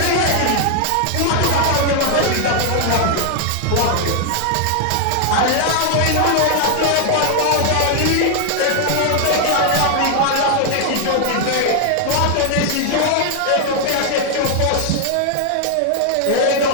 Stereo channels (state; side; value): different; both; correlation 0.00